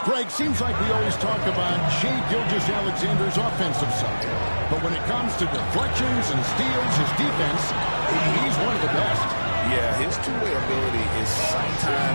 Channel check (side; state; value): both; inverted; correlation -1.00